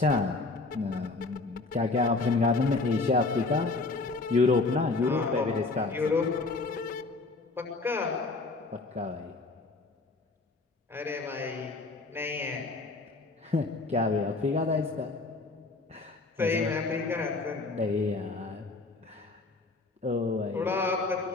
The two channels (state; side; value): quieter; right; 3.6 dB